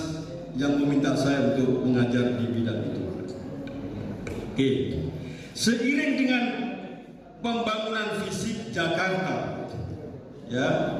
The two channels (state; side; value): identical; both; correlation 1.00